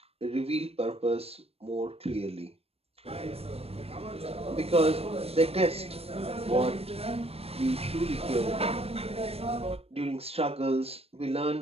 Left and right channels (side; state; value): left; late; 0.29 ms